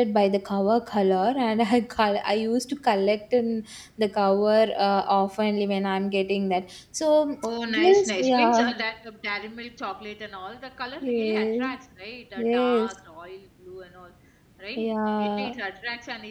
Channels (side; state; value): both; identical; correlation 1.00